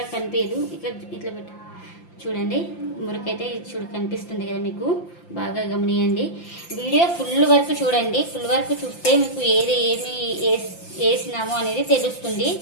కనిపించదు. ఇక్కడ ఇట్లా పెట్టు చూడండి మురికైతే చూడు కనిపిస్తుంది కదా మీకు, బాగా గమనియండి. వీడియో ఫుల్ వరకు చూడండి. ఫుల్ వరకు చూస్తే మీకు ఏమి వేసినామో అనేది తెలుస్తుంది,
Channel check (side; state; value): right; late; 5.8 ms